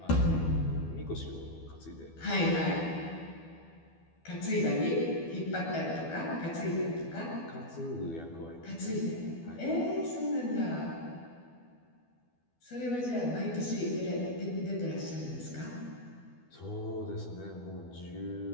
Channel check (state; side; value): late; right; 12 ms